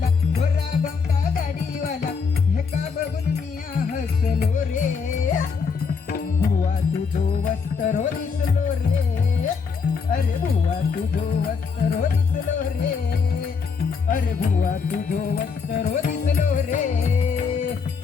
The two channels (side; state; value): right; quieter; 5.5 dB